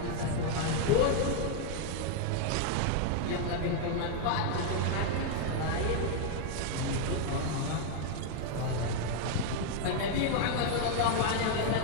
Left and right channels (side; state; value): both; different; correlation 0.00